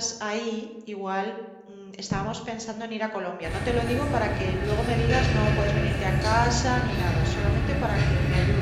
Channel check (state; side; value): identical; both; correlation 1.00